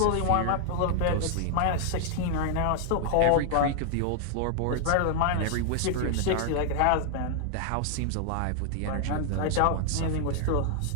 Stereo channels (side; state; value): both; different; correlation 0.00